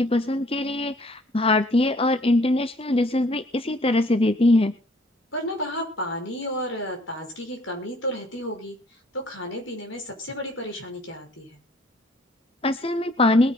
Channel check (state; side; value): normal; both; correlation 0.59